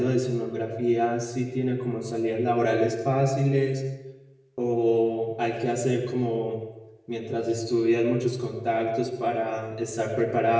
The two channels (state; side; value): identical; both; correlation 1.00